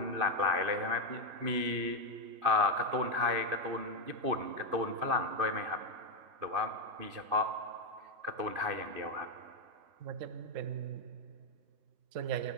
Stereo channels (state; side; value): late; left; 2.6 ms